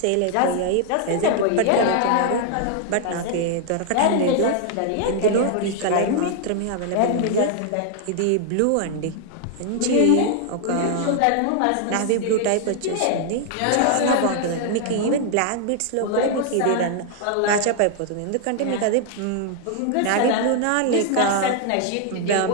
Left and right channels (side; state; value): both; different; correlation 0.00